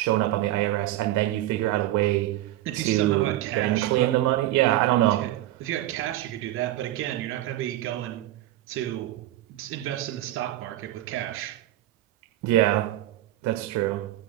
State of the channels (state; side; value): quieter; left; 14.9 dB